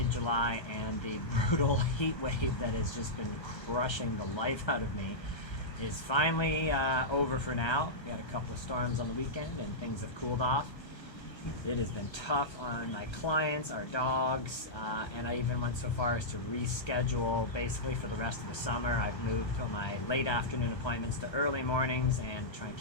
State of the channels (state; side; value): late; right; 1.3 ms